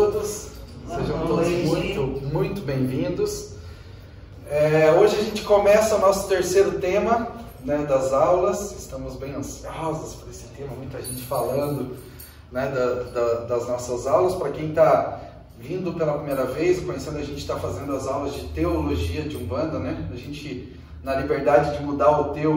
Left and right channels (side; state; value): both; identical; correlation 1.00